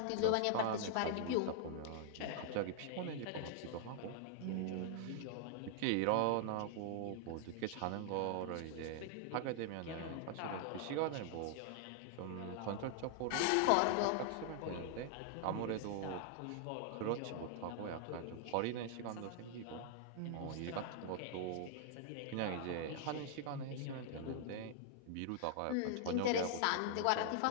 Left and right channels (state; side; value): different; both; correlation 0.00